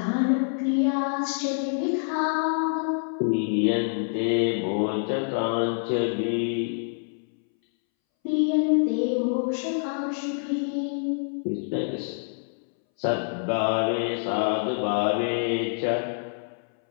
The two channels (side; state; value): right; silent; 61 dB below the other